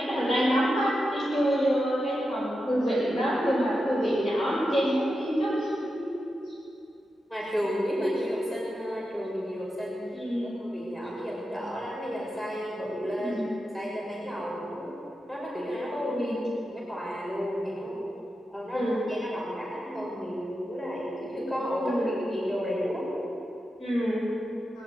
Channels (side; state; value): both; normal; correlation 0.89